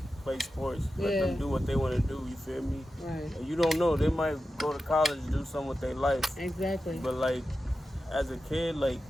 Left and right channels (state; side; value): normal; both; correlation 0.92